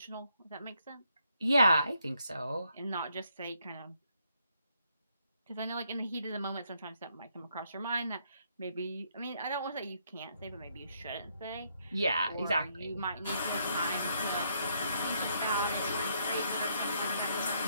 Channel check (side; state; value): both; inverted; correlation -0.73